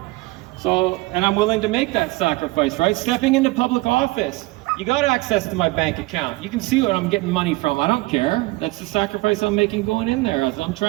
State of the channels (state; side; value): quieter; left; 21.8 dB